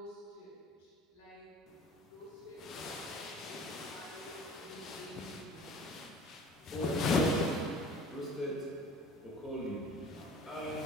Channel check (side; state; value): both; normal; correlation 0.45